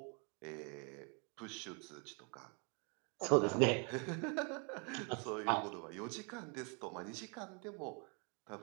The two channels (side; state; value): left; quieter; 34.6 dB